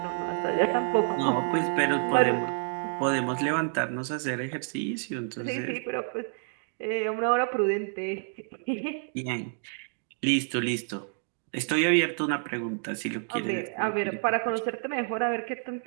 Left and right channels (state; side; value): silent; left; 59 dB below the other